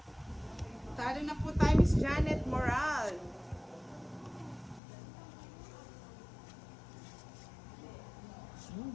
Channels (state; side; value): drops out; right; at 4.8 s